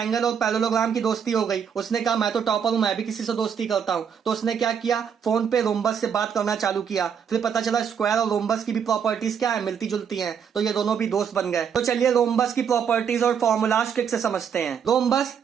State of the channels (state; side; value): quieter; left; 7.4 dB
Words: और पैरेललोग्राम की दोस्ती हो गई। उसने कहा मैं तो टॉपर हूं, मैं भी किसी से दोस्ती करता हूं। तो उसने क्या किया, फोन पे रोम्बस से बात करना चालू किया। फिर पता चला स्क्वायर और रोम्बस की भी प्रॉपर्टीज क्या है, मिलती जुलती हैं, तो ये दोनों भी दोस्त बन गए। तो चलिए रोम्बस की प्रॉपर्टीज और फॉर्मूलाज ट्रिक से समझते हैं। रोम्बस